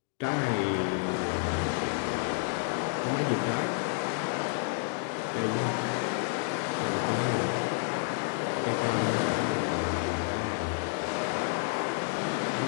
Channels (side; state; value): right; silent; 58 dB below the other